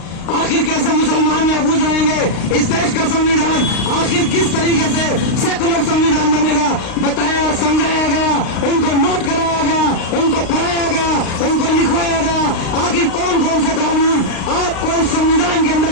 आखिर कैसे मुसलमान महफूज रहेंगे, इस देश का संविधान आखिर किस तरीके से सेकुलर संविधान बनेगा, बताया, समझाया गया, उनको नोट कराया गया, उनको पढ़ाया गया, उनको लिखवाया गया। आखिर कौन कौन से कानून आपको इस संविधान के अंदर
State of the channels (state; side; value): late; right; 36 ms